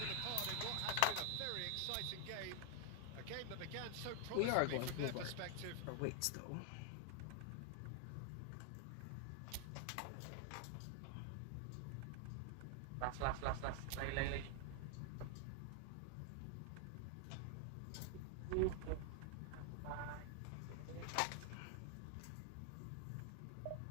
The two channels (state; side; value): different; both; correlation 0.00